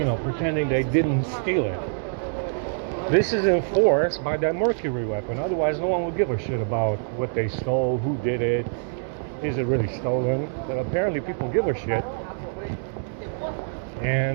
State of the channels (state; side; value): silent; left; digital silence